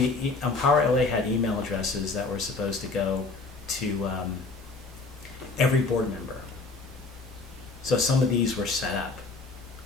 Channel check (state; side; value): quieter; right; 3.9 dB